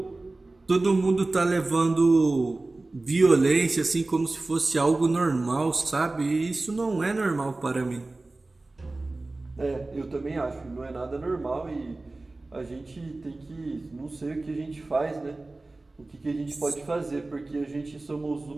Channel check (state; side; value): quieter; left; 3.1 dB